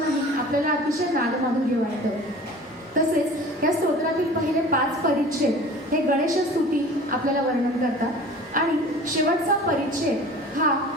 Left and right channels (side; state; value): both; normal; correlation 0.42